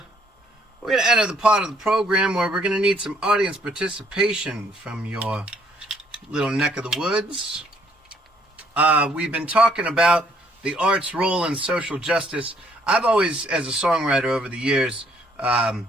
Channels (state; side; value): normal; both; correlation 0.66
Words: going to enter the part of the program where we're going to need some audience participation from your little neck of the woods. We've been talking about the art's role in social justice. I've always, as a songwriter over the years,